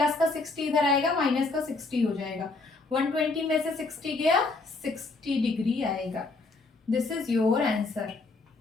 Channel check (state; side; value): quieter; right; 3.6 dB